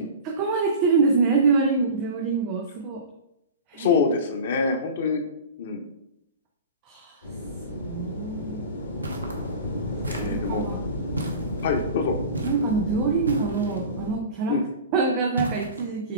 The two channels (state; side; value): inverted; both; correlation -0.34